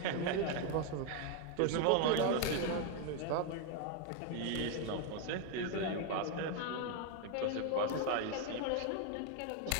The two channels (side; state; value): both; different; correlation 0.01